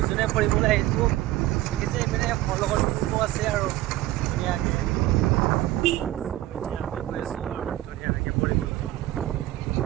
ফুৰিবলৈ আহিছোঁ দেখিছে এইপিনে মোৰ লগত পূৰ্ব আছে আৰু ধুনীয়াকৈ গৈ আছোঁ আৰু ধুনীয়াকৈ ফুৰিবলৈ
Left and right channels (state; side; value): quieter; left; 15.7 dB